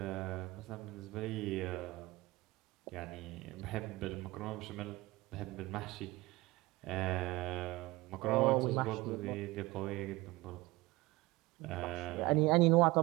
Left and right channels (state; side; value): quieter; left; 20.7 dB